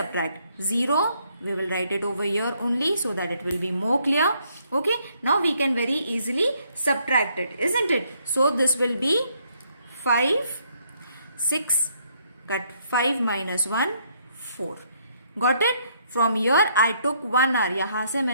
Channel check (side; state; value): both; inverted; correlation -0.70